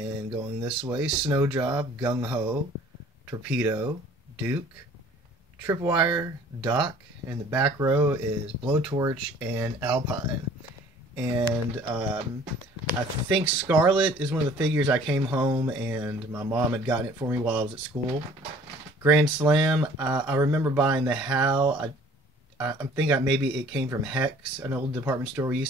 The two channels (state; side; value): normal; both; correlation 0.52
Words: going this way, Snow Job, Gung Ho, Torpedo, Duke, Tripwire, Doc, and the back row is Blowtorch and Alpine. And I think Scarlet is one of the figures I came home and my mom had gotten it for me while I was at school. Grand Slam, I remember buying the HAL. I think maybe it came from Hex, an old department store we